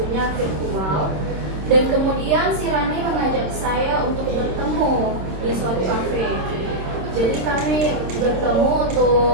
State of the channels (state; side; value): late; left; 26 ms